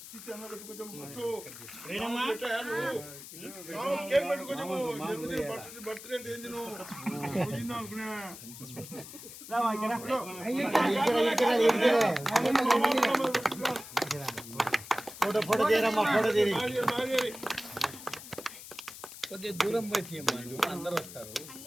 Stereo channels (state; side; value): noise; left; hiss, 14 dB below the sound